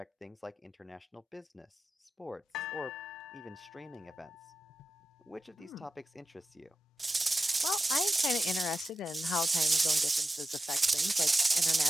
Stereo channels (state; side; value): normal; both; correlation 0.92